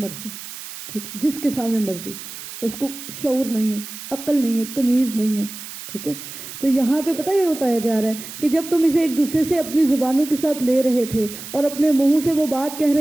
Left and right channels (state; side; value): noise; right; hiss, 12 dB below the sound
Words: ٹھیک، جس کے سامنے مرضی. اس کو شعور نہیں ہے، عقل نہیں ہے، تمیز نہیں ہے. ٹھیک ہے، تو یہاں پہ پتہ یہ بتایا جا رہا ہے کہ جب تم اسے ایک دوسرے سے اپنی زبانوں کے ساتھ لے رہے تھے اور اپنے منہ سے وہ بات کہہ